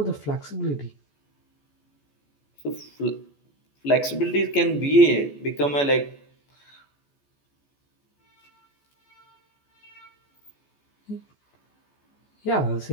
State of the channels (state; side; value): late; right; 14 ms